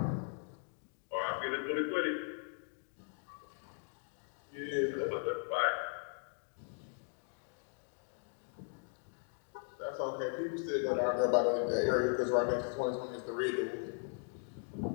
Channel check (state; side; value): silent; right; 52 dB below the other